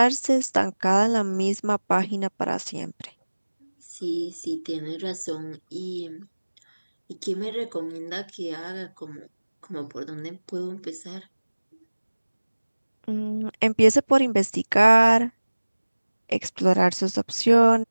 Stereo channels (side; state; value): both; inverted; correlation -1.00